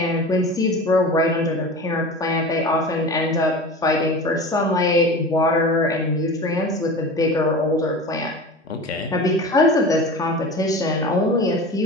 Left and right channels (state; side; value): normal; both; correlation 0.34